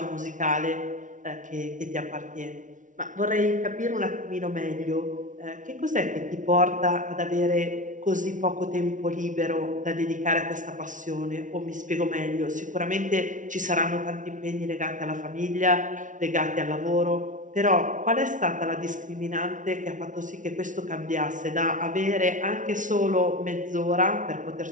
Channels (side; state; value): left; late; 0.37 ms